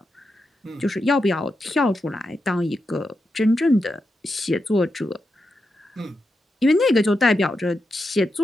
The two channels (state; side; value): normal; both; correlation 0.87